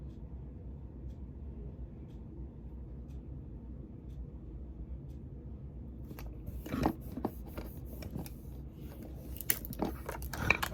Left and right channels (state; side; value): identical; both; correlation 1.00